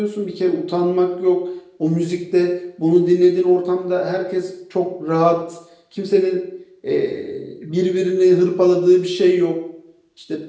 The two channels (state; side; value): identical; both; correlation 1.00